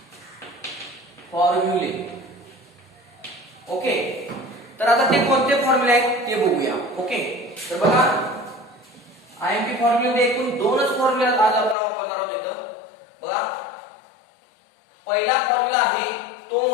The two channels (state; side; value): drops out; right; at 11.8 s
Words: फॉर्म्युले ओके तर आता ते कोणते फॉर्म्युले आहेत ते बघूया ओके तर बघा आयएमपी फॉर्म्युले एकूण दोनच फॉर्म्युले आज आपण वापरणार आहोत इथं बघा पहिला फॉर्म्युला आहे तो